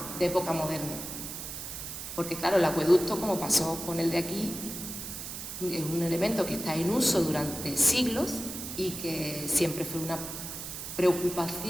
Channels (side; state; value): right; noise; hiss, 8 dB below the sound